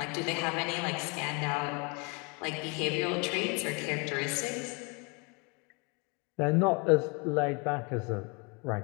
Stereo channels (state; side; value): quieter; right; 31.0 dB